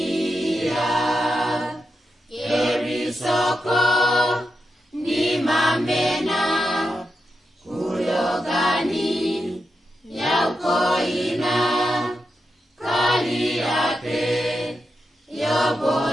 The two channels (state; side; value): normal; both; correlation 0.87